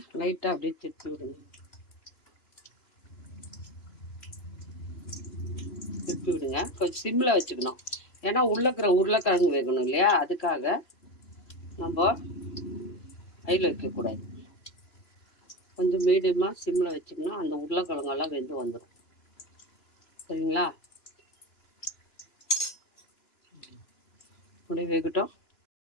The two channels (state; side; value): late; right; 2.9 ms